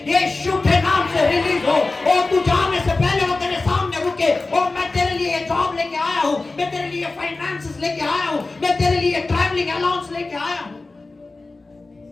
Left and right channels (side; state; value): right; quieter; 3.4 dB